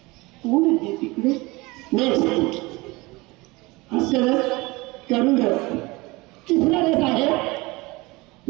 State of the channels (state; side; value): quieter; left; 23.1 dB